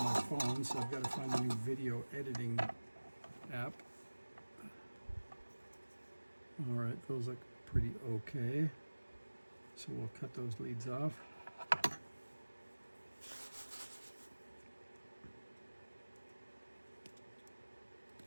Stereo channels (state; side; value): inverted; both; correlation -1.00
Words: my phone, so I've got to find a new video editing app. All right, those look pretty okay. So we'll cut those leads off.